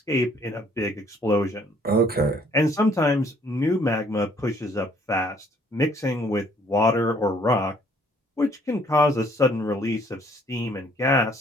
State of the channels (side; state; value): both; normal; correlation 0.62